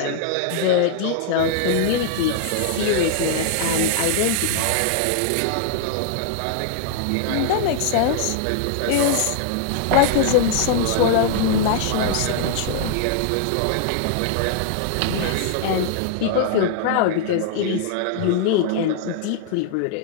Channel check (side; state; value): both; different; correlation -0.01